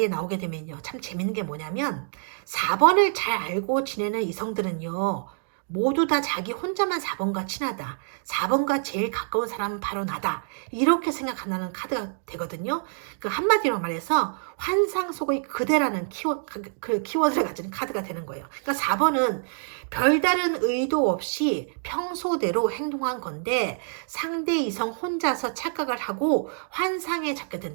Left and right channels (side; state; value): left; silent; digital silence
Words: 나오게 되면요. 참 재밌는 게 뭐냐면, 4번을 잘 알고 지내는 이성들은요, 모두 다 자기 혼자만 4번과 친하다. 4번과 제일 가까운 사람은 바로 나다. 이렇게 생각한다는 카드가 되거든요. 그 한마디로 말해서 환상 속의 그대라는 키워드를 가진 카드가 되는 거예요. 그러니까 4번은 별다른 의도 없이 평소대로 행동한 건데 상대 이성 혼자서 착각을 하고 환상에 잡게